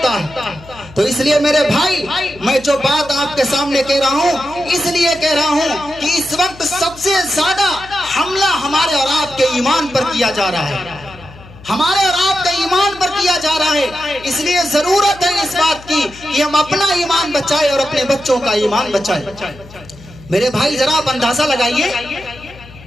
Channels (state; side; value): noise; left; hum, 20 dB below the sound